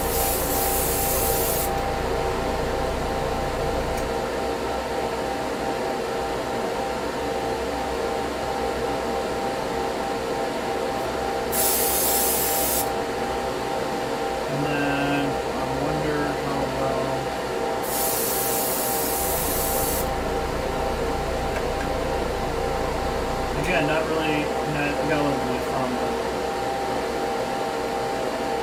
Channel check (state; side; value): identical; both; correlation 1.00